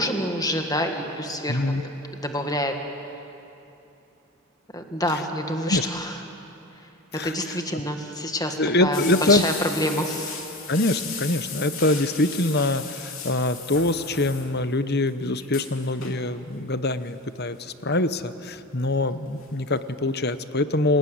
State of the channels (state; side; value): normal; both; correlation 0.30